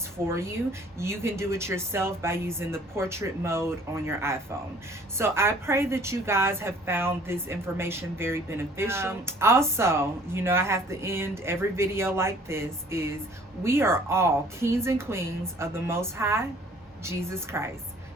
for you. You can do it yourself by using the portrait mode on your iPhone. So I pray that you guys have found this information very beneficial. Also, you know, I have to end every video like this is we are all kings and queens of the Most High, Jesus Christ.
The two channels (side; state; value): both; normal; correlation 0.55